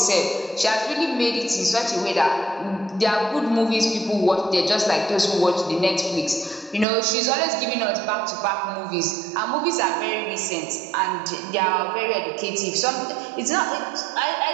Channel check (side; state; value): left; drops out; at 6.9 s